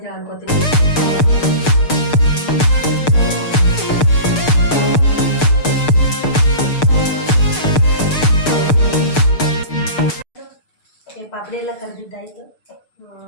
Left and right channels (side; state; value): right; late; 6.7 ms